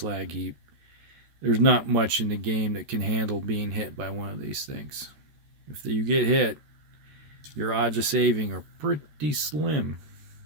heap. There's not much in the game that can handle being hit by one of these things. If you get hit, your odds of saving are pretty slim.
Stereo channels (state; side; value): late; left; 13 ms